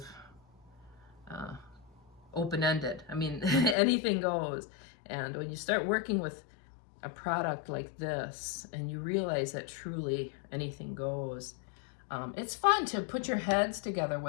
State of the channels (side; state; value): right; drops out; at 3.8 s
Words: open-ended. I mean, anything goes. And when you start working with a product like this and you realize that truly anything goes, it's fun to put your heads together